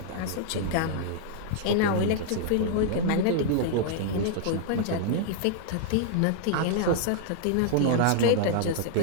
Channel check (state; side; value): different; both; correlation -0.01